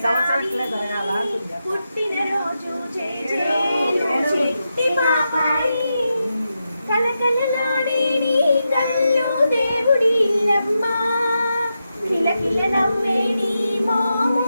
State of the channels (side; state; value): both; inverted; correlation -0.88